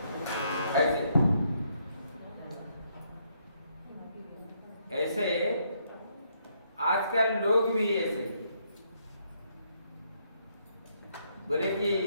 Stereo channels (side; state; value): both; inverted; correlation -0.73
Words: ऐसे आजकल लोग भी ऐसे बोले कि